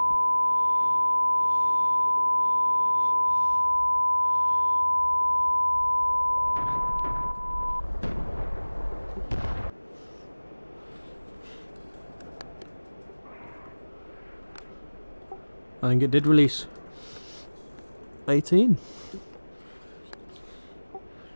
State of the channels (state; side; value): inverted; both; correlation -1.00